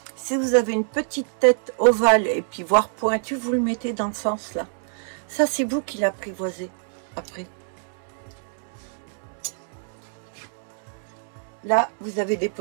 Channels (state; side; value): silent; left; 62 dB below the other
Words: Si vous avez une petite tête ovale et puis voire pointue, vous le mettez dans le sens là. Ça, c'est vous qui l'apprivoisez après. Là, vous avez des